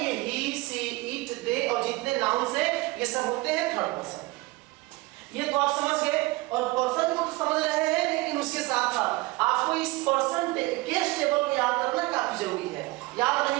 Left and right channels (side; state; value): left; quieter; 21.9 dB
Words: ही सी इट दे और जितने नाउन्स हैं ये सब होते हैं थर्ड पर्सन। ये तो आप समझ गए। और पर्सन को समझ रहे हैं, लेकिन उसके साथ साथ आपको इस पर्सन केस टेबल को याद करना काफी जरूरी है। याद